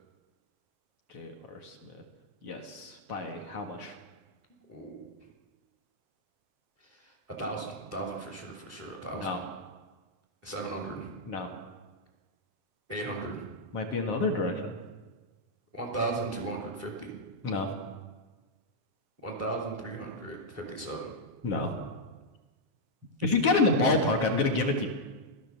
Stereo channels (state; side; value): late; left; 7.5 ms